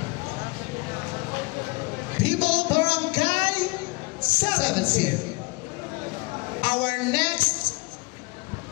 people of Barangay 17, our next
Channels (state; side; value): quieter; right; 26.4 dB